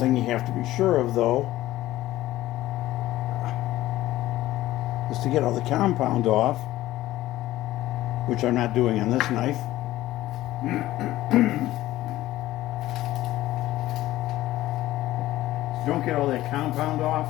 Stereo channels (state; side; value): quieter; right; 15.7 dB